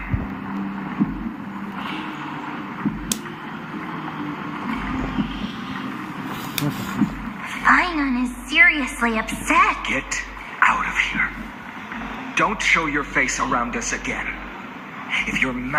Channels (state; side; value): identical; both; correlation 1.00